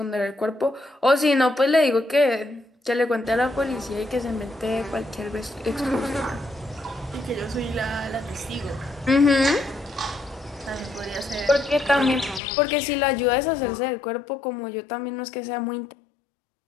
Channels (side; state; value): right; drops out; at 12.4 s